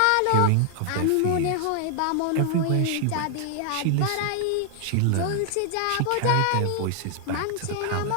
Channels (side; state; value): both; different; correlation 0.00